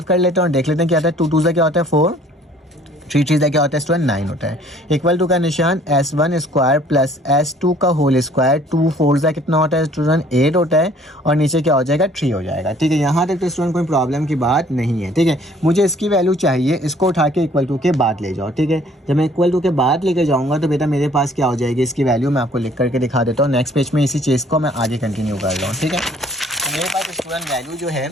कर लेते हैं और देख लेते हैं क्या आता है। 2 2 से क्या होता है 4, 3 3 से क्या होता है स्टूडेंट 9 होता है। इक्वल टू का निशान S1 स्क्वायर प्लस S2 का होल स्क्वायर, 2 4 से कितना होता है स्टूडेंट 8 होता है और नीचे क्या हो जाएगा 3 हो जाएगा। ठीक है, यहाँ तक तो स्टूडेंट कोई प्रॉब्लम की बात नहीं है। ठीक है, मुझे इसकी वैल्यू चाहिए, इसको उठा के इक्वल टू के बाद ले जाओ। ठीक है, जब मैं इक्वल टू के बाद लेके जाऊँगा तो बेटा मेरे पास क्या हो जाएगी इसकी वैल्यू, मैं आपको लिख करके दिखा देता हूँ। नेक्स्ट पेज में इसी चीज़ को मैं आगे कंटिन्यू कर रहा हूँ। ठीक है, तो मेरे पास स्टूडेंट वैल्यू जो है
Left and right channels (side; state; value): both; normal; correlation 0.57